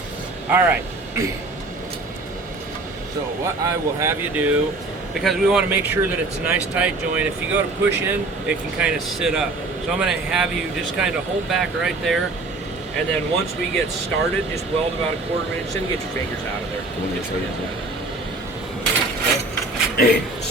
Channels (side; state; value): left; quieter; 3.2 dB